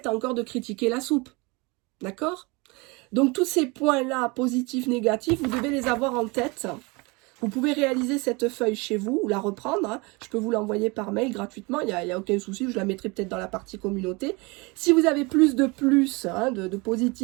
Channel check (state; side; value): quieter; left; 26.7 dB